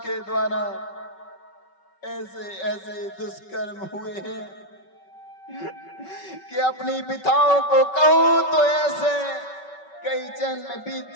द्वारा ऐसे ऐसे दुष्कर्म हुए हैं कि अपनी पिताओं को कहूं तो ऐसे कई जन्म बीत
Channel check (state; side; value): late; right; 5.3 ms